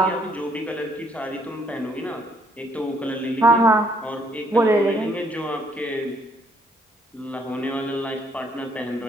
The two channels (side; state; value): both; normal; correlation 0.67